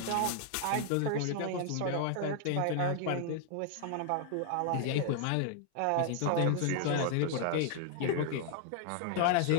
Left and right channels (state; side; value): different; both; correlation 0.00